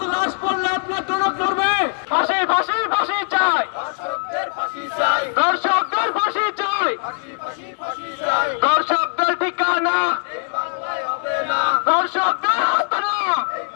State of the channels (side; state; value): right; silent; 59 dB below the other